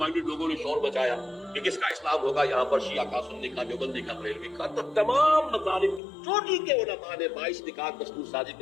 लोगों ने शोर मचाया कि किसका इस्लाम होगा, यहाँ पर शिया का, सुन्नी का, देवबंदी का, बरेलवी का, तो तमाम मज़ालिम चोटी के उलमा ने 22 निकात दस्तूर साजी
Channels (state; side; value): drops out; right; at 6.0 s